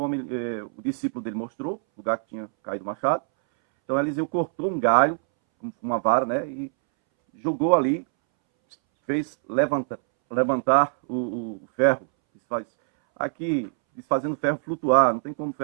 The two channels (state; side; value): silent; left; 62 dB below the other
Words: discípulo dele mostrou o lugar que tinha caído o machado, então Eliseu cortou um galho com uma vara, né? E jogou ali, fez levantar o ferro. Aqui, fazendo ferro flutuar, não tem como